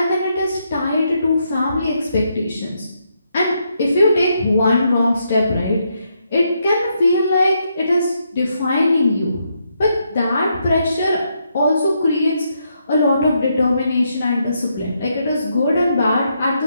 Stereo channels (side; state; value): both; inverted; correlation -0.78